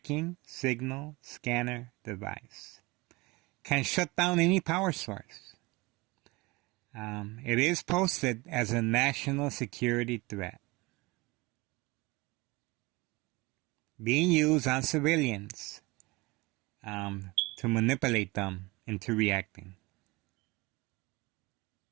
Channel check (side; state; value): left; quieter; 23.7 dB